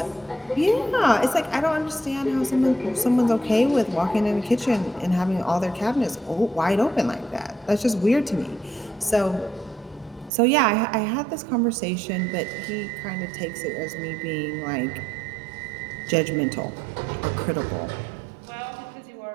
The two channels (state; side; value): drops out; left; at 10.3 s